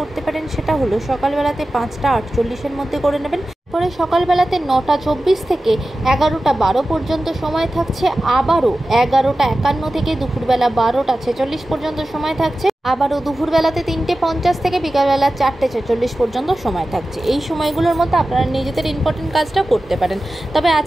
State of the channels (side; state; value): both; normal; correlation 0.94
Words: করতে পারেন, সেটা হলো সকালবেলাতে 5:48-এর মধ্যে করে নেবেন। পরে সকালবেলাতে 9:24 থেকে 11:12 পর্যন্ত সময় থাকছে। আবারও 11:51 থেকে দুপুরবেলা 12:46 পর্যন্ত সময় থাকছে। আবারও দুপুরবেলাতে 3:50 থেকে বিকালবেলা 4:46 পর্যন্ত সময় থাকছে। এই সময়গুলোর মধ্যে আপনারা নিজেদের ইম্পর্টেন্ট কাজটা করতে পারেন। তবে